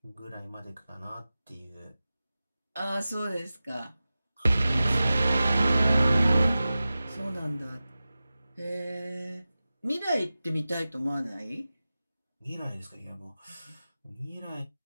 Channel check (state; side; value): inverted; both; correlation -0.95